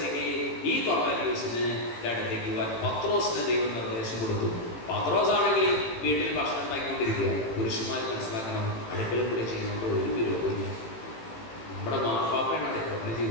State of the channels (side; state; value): right; late; 18 ms